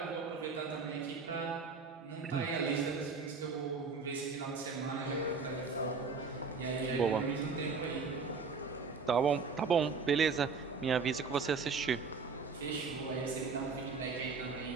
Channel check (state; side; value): quieter; left; 4.8 dB